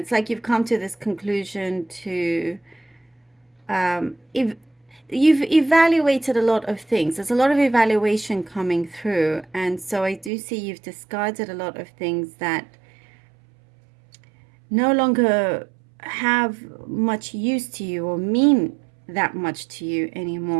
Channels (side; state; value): left; drops out; at 10.3 s